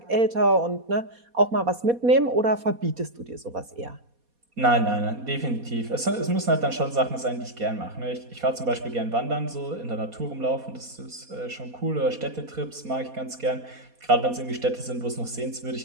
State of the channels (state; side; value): late; left; 4.2 ms